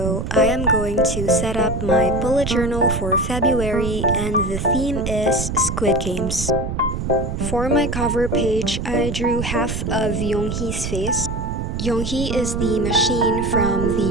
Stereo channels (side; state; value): right; noise; rumble, 4 dB below the sound